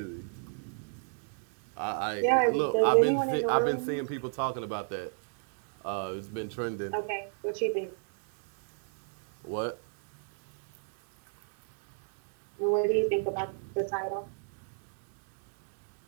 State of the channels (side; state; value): left; silent; digital silence